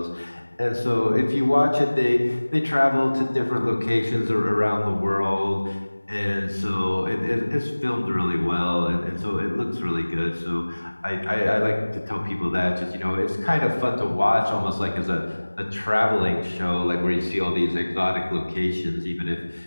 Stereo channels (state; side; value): inverted; both; correlation -1.00